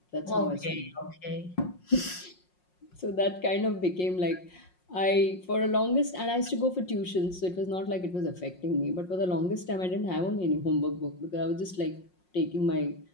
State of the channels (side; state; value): right; late; 5.5 ms